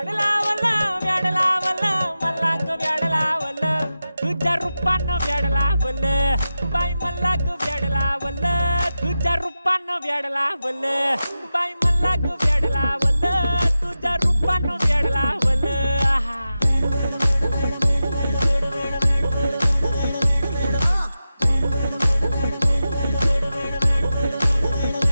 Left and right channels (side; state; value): both; inverted; correlation -0.92